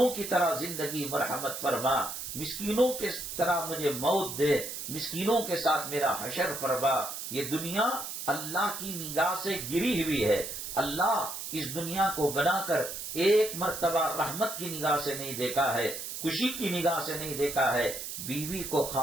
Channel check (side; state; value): right; noise; hiss, 7 dB below the sound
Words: کی طرح زندگی مرحمت فرما، مسکینوں کے طرح مجھے موت دے، مسکینوں کے ساتھ میرا حشر فرما۔ یہ دنیا اللہ کی نگاہ سے گری ہوئی ہے۔ اللہ اس دنیا کو بنا کر ایک مرتبہ رحمت کی نگاہ سے نہیں دیکھا ہے، خوشی کی نگاہ سے نہیں دیکھا ہے۔ بیوی کو